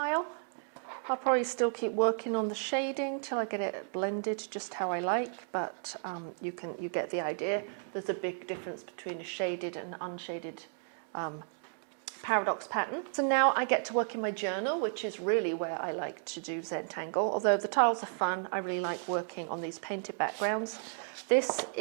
I'll probably still keep working on the shading till I get it blended just how I like, but you get the idea. There's a big difference between a shaded and unshaded paradox pattern. So now I get to work in my journal, which is really where I like to do Zentangle. Although the tiles are fun, I really like working on these painted backgrounds. This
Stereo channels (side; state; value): left; silent; digital silence